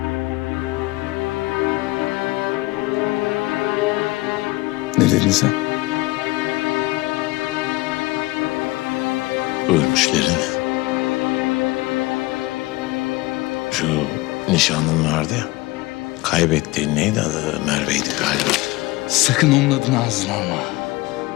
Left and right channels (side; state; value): right; quieter; 20.8 dB